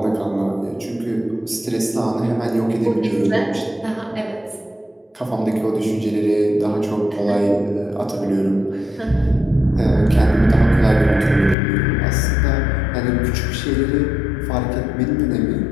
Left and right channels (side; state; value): right; drops out; at 11.6 s